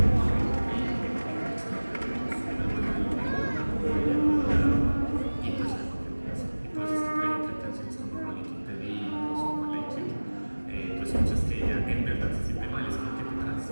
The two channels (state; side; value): inverted; both; correlation -1.00